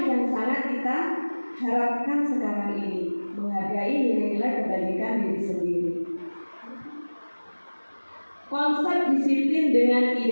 yang sangat kita harapkan sekarang ini, menghargai nilai-nilai kebajikan diri sendiri. Konsep disiplin dengan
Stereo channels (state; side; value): inverted; both; correlation -1.00